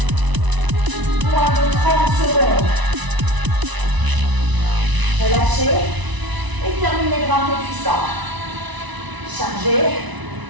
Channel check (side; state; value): left; late; 1.0 ms